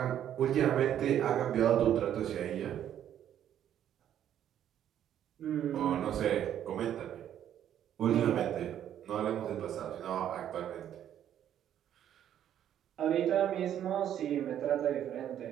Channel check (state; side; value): quieter; left; 10.4 dB